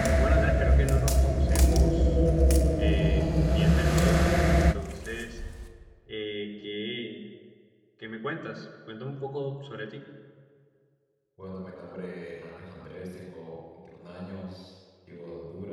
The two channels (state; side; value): identical; both; correlation 1.00